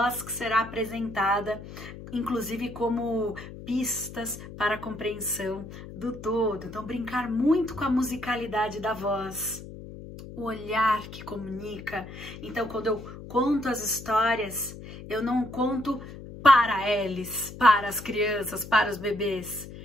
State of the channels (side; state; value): left; noise; hum, 13 dB below the sound